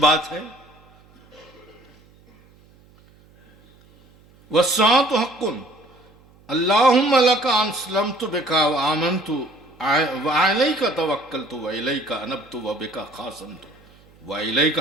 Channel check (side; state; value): right; noise; hum, 28 dB below the sound